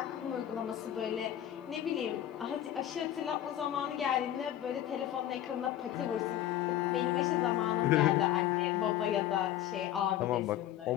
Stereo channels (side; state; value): right; quieter; 11.9 dB